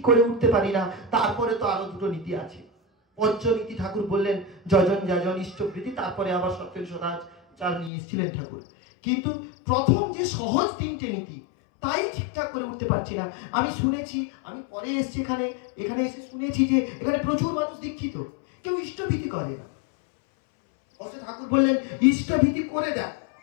করে উঠতে পারি না, তারপরে তো আরো 2টো নীতি আছে। পঞ্চনীতি ঠাকুর বললেন যজন যাজন ইষ্টপ্রীতি, তারপরে আবার সত্যেন সদাচার নিয়ে এসেছিলেন ঠাকুর। কিন্তু প্রথম যে সহজ 3টে নীতি তাই ঠিকঠাক করে উঠতে পারছি না। আমি শুনেছি, আমি পরে এসেছি এখানে এসে শুনেছি যে এখানে প্রচুর মানুষ দীক্ষিত, কেউ ইষ্টভীতি করে না। অথচ ঠাকুর বললেন ইষ্টভীতি করে দেয়।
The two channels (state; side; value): drops out; right; at 7.9 s